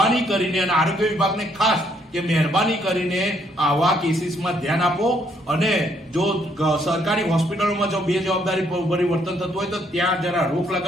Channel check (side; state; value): both; normal; correlation 0.69